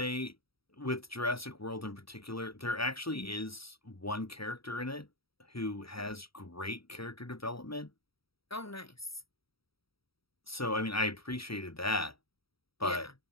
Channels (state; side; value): late; right; 0.75 ms